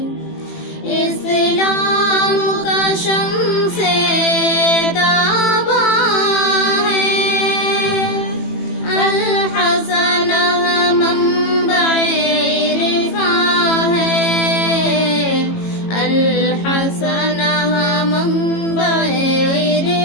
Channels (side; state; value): right; late; 18 ms